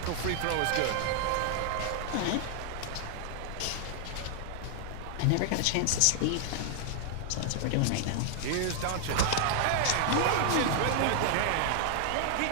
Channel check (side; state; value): both; different; correlation 0.00